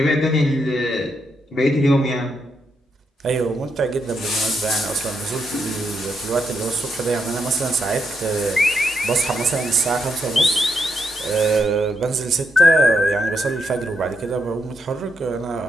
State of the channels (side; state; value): both; normal; correlation 0.80